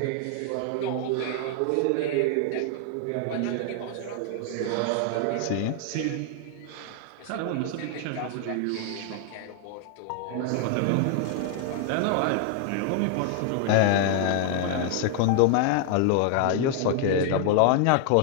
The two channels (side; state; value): both; different; correlation 0.00